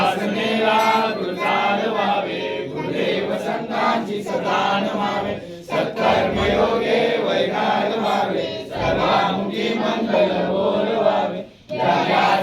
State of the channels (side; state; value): both; identical; correlation 1.00